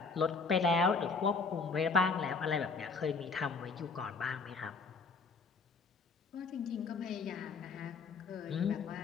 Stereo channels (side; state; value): right; quieter; 4.6 dB